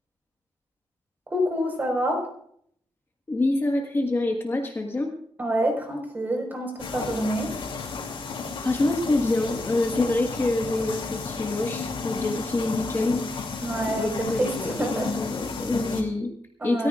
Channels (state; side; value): normal; both; correlation 0.84